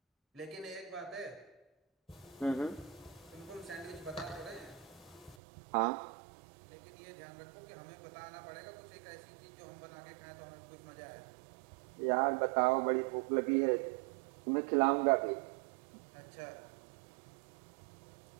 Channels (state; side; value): drops out; left; at 5.4 s